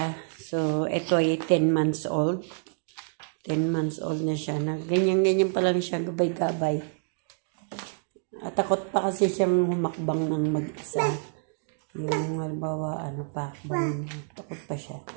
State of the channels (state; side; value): silent; left; 60 dB below the other